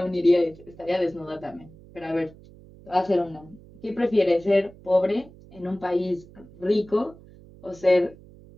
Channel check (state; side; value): noise; right; hum, 22 dB below the sound